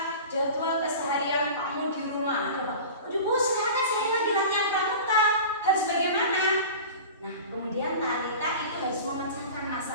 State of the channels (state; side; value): inverted; both; correlation -0.35